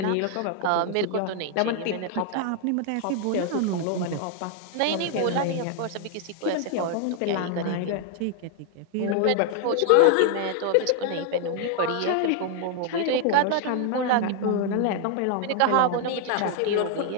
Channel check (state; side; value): different; both; correlation 0.00